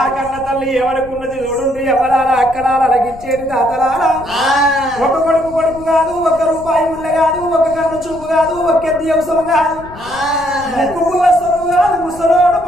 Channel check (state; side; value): noise; left; rumble, 18 dB below the sound